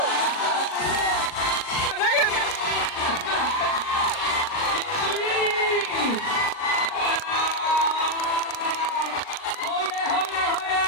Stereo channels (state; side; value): late; right; 39 ms